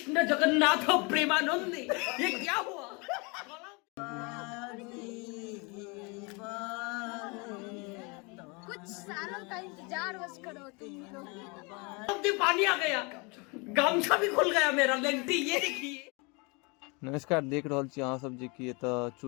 जगन्नाथ प्रेमानंद ये क्या हुआ। कुछ सालों का इंतजार बस करो तुम लोग। पानी आ गया, गामछा भी खुल गया मेरा लेंटी। ये देखिए। नमस्कार, देख रहा छी अहाँ सब जे कि एतऽ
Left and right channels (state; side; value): quieter; right; 29.8 dB